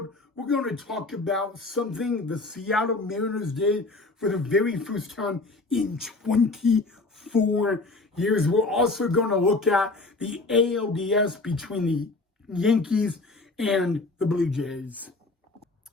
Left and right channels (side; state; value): right; quieter; 3.3 dB